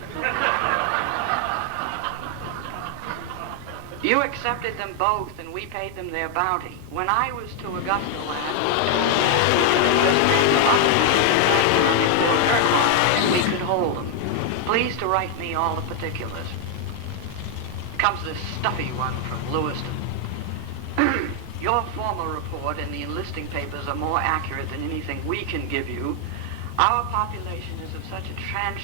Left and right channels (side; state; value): both; different; correlation 0.00